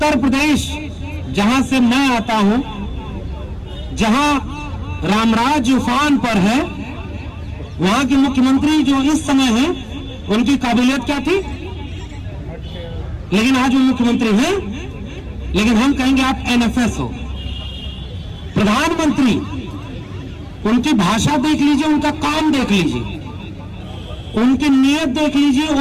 प्रदेश, जहां से मैं आता हूं, जहां रामराज उफान पर है, वहां के मुख्यमंत्री जो इस समय हैं, उनकी काबिलियत क्या थी? लेकिन आज वो मुख्यमंत्री हैं, लेकिन हम कहेंगे आप NFS हो। प्रधानमंत्री, उनकी भाषा देख लीजिए, उनका काम देख लीजिए, उनकी नीयत देख लीजिए,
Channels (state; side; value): identical; both; correlation 1.00